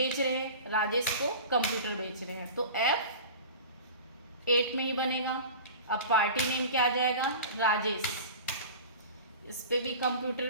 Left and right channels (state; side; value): inverted; both; correlation -0.35